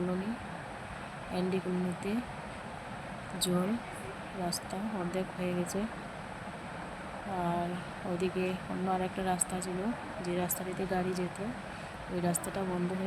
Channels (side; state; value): both; identical; correlation 1.00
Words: এনডি কলোনিতে। জল রাস্তা অর্ধেক হয়ে গেছে, আর ওইদিকে অন্য আরেকটা রাস্তা ছিল, যে রাস্তাটিতে গাড়ি যেত, ওই রাস্তাটা বন্ধ